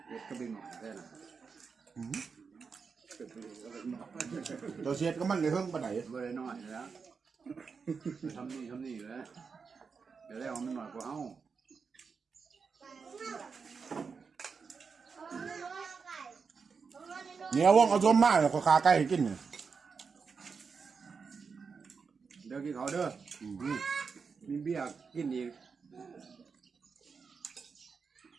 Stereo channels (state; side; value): quieter; left; 5.4 dB